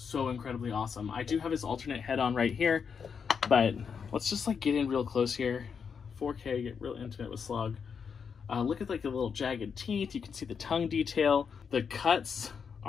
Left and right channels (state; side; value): quieter; right; 6.4 dB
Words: incredibly awesome. I do have his alternate head on right here, but let's just like get in real close here. 4K, get real intimate with Slogg. Look at like the little jagged teeth. You can see the tongue detail. The cuts